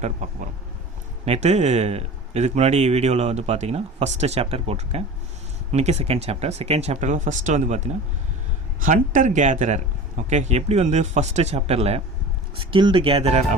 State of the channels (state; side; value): normal; both; correlation 0.36